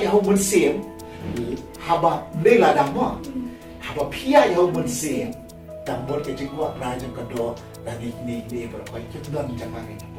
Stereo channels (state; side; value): identical; both; correlation 1.00